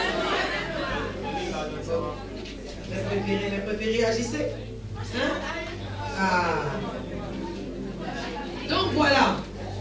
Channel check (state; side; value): identical; both; correlation 1.00